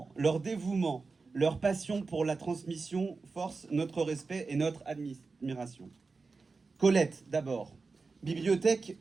leur dévouement, leur passion pour la transmission forcent notre respect et notre admiration. Colette, d'abord.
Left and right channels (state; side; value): quieter; left; 4.2 dB